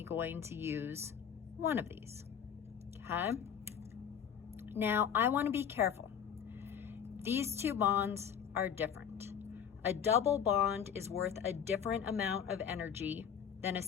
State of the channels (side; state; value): right; quieter; 8.1 dB